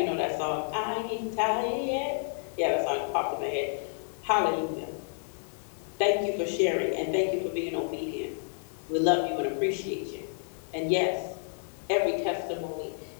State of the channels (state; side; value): silent; right; 58 dB below the other